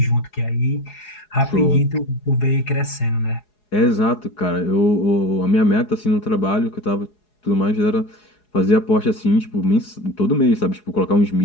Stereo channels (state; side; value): late; right; 4.8 ms